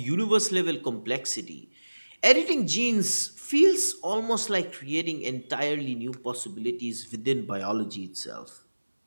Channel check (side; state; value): both; inverted; correlation -1.00